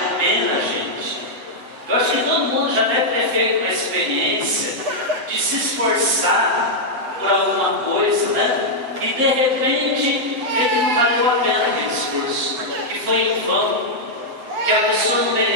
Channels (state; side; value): late; left; 7.8 ms